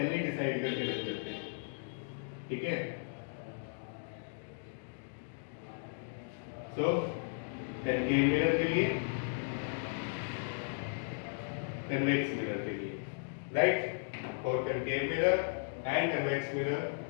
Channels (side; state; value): right; silent; digital silence